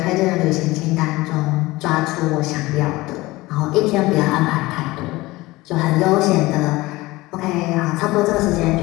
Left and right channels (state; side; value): quieter; right; 20.0 dB